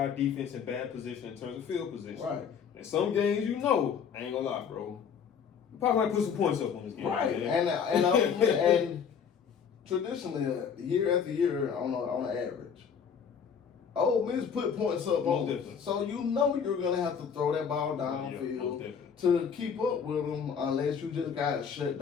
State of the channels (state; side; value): quieter; right; 7.0 dB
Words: defense in bad position in terms of field position. Right. And some games, you know, I ain't gonna lie, bro. You probably might put some points up on this game. Right. Man. And traditionally, year after year, on an average, Ole Miss put points up on them. So you know you're going to have to throw that ball downfield to keep up with them, unless you just got shut